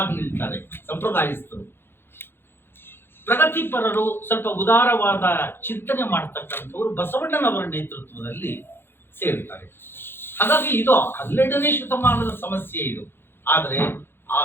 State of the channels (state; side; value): late; right; 0.11 ms